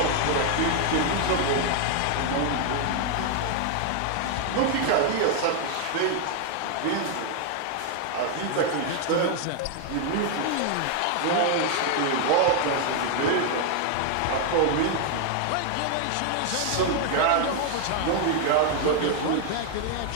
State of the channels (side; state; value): both; different; correlation 0.00